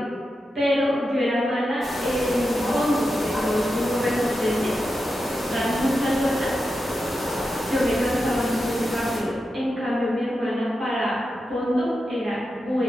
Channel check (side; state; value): both; normal; correlation 0.89